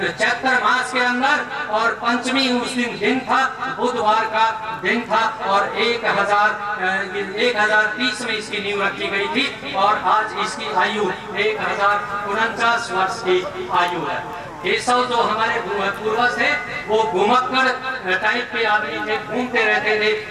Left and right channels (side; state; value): both; identical; correlation 1.00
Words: चैत्र मास के अंदर और पंचमी उस दिन था, बुधवार का दिन था और 1030 में इसकी नींव रखी गई थी और आज इसकी आयु 1049 वर्ष की आयु है। केशव जो हमारे पूर्वज थे वो घुमक्कड़ टाइप के आदमी थे, घूमते रहते थे